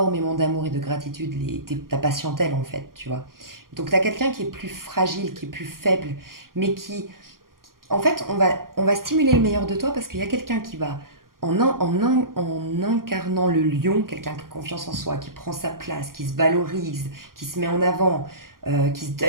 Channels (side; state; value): left; late; 0.92 ms